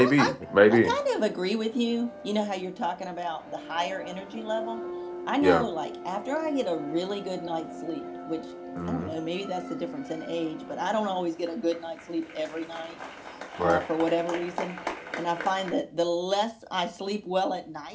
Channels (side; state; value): both; identical; correlation 1.00